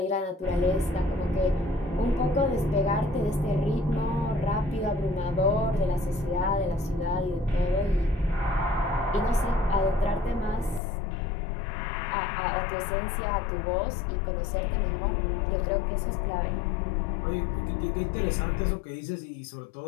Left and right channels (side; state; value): right; drops out; at 10.8 s